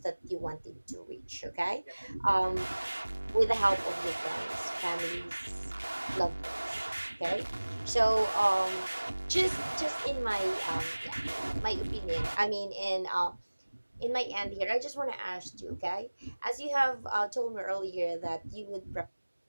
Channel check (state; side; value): inverted; both; correlation -1.00